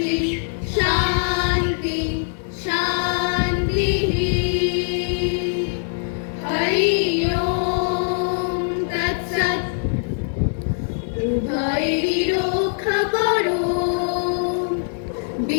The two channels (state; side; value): silent; right; digital silence